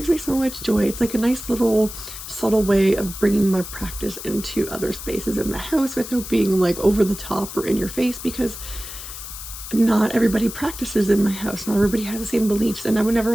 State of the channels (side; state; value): left; noise; hiss, 11 dB below the sound